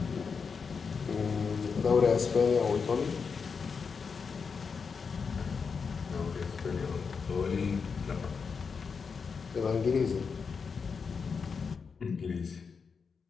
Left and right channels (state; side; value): quieter; right; 5.6 dB